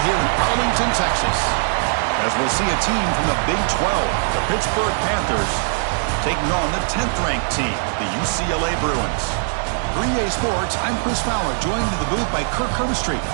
here in Arlington, Texas. As we'll see a team from the Big 12, the Pittsburgh Panthers, taking on the 10th-ranked team, the UCLA Bruins. For EA Sports, I'm Chris Fowler, joined in the booth by Kirk Herbstreit.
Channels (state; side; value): silent; left; digital silence